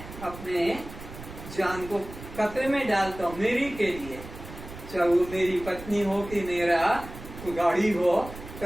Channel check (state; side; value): noise; right; rumble, 14 dB below the sound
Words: अपने जान को खतरे में डालता हूँ, मेरी के लिए। चाहे वो मेरी पत्नी हो कि मेरा गाड़ी हो,